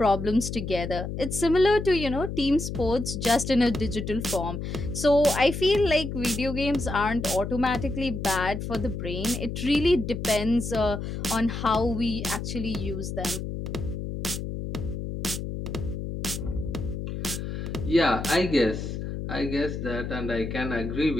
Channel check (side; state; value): left; noise; hum, 5 dB below the sound